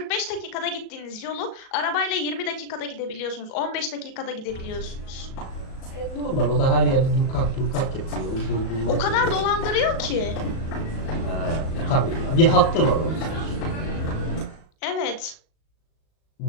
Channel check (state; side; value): late; right; 37 ms